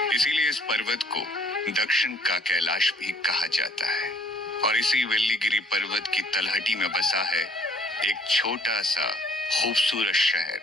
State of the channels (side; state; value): both; normal; correlation 0.59